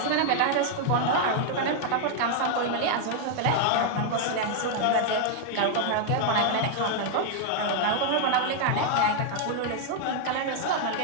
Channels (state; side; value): different; both; correlation 0.00